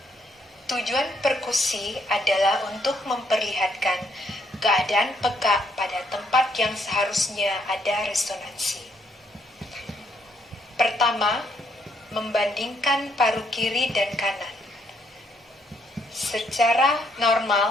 Tujuan perkusi adalah untuk memperlihatkan keadaan peka pada tempat yang seharusnya ada resonansi. Pertama, membandingkan paru kiri dan kanan. Secara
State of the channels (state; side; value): normal; both; correlation 0.71